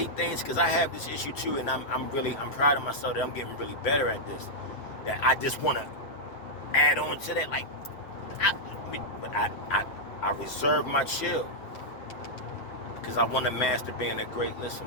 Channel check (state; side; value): late; right; 8.0 ms